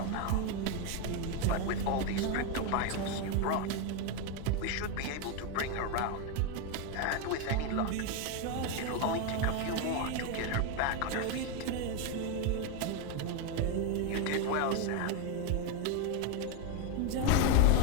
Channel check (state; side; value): different; both; correlation 0.02